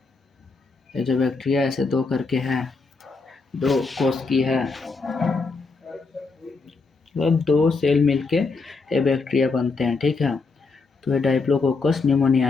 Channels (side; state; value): right; quieter; 4.1 dB